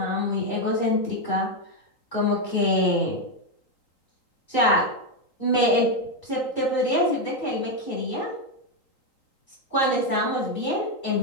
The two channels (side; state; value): right; late; 3.8 ms